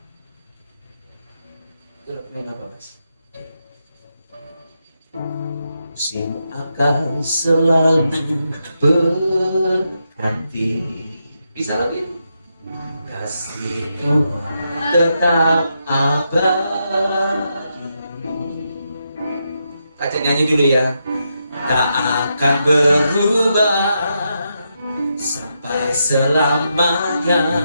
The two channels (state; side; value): inverted; both; correlation -0.83